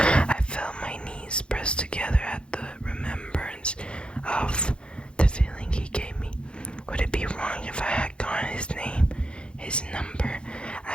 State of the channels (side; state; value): right; late; 0.055 ms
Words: felt my knees pressed together at the remembrance of the feeling he gave me. Would it be wrong if I had gotten his name, his number?